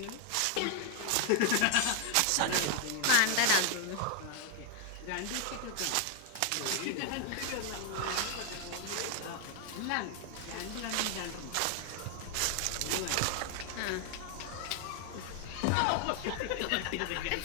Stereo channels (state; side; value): different; both; correlation 0.00